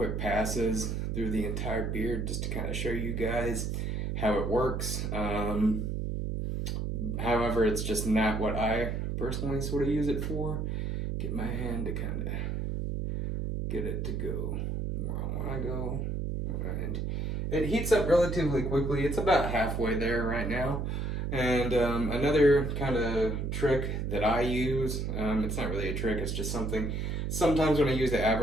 passes through the entire beard just to kind of show you guys how it works. However, it's just not what I personally sort of use it for. Get my hand to kind of get it to go where I want to go. And it heats up relatively quickly. It's about halfway there right now. And another kind of trick that I use, it's not really a trick, it's just something. Sometimes when I use the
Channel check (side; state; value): right; noise; hum, 1 dB below the sound